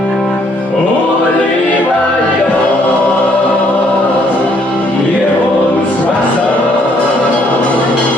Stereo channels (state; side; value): normal; both; correlation 0.67